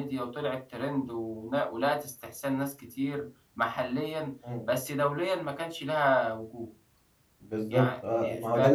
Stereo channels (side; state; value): both; identical; correlation 1.00